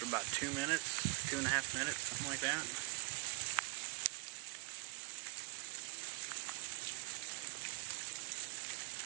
about 2 minutes, 2.5 minutes, something like that.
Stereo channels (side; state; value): left; quieter; 31.2 dB